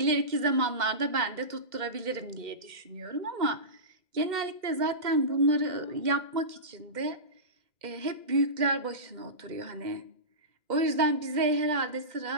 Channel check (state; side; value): late; left; 2.1 ms